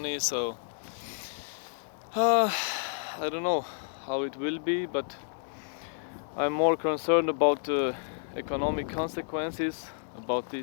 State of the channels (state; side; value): silent; right; digital silence